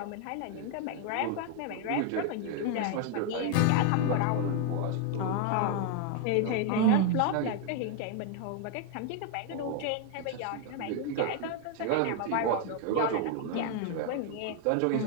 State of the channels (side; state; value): both; different; correlation 0.01